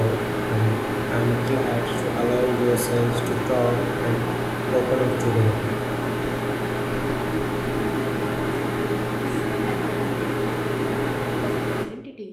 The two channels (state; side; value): identical; both; correlation 1.00